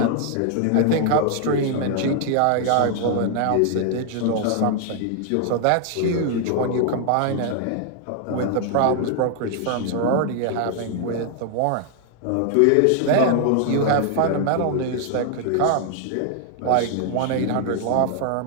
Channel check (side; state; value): both; different; correlation 0.00